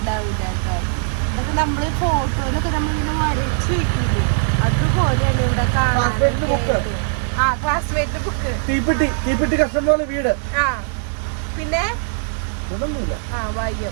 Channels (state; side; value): silent; left; 66 dB below the other